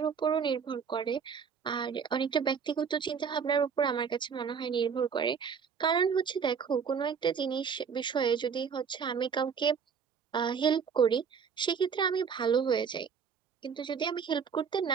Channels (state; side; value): quieter; left; 6.5 dB